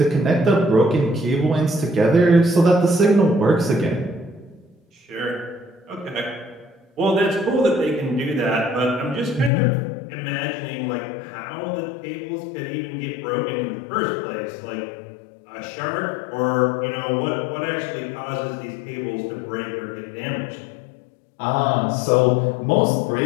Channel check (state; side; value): drops out; right; at 9.5 s